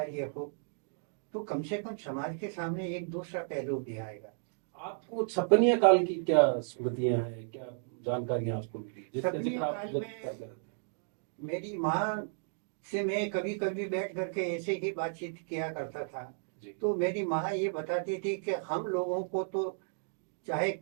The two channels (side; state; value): left; silent; digital silence